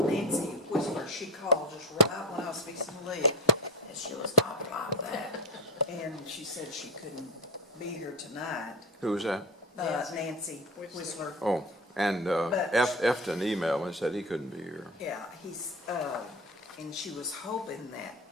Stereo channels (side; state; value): both; normal; correlation 0.22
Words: Nancy Whisper, she called just right when I was fixing to leave, and she was talking like that. And she said she couldn't be here tonight. Who was that? Nancy Whistler. Oh, and But- Efton emailed me and said he couldn't be here. Yeah, and she was hoping that,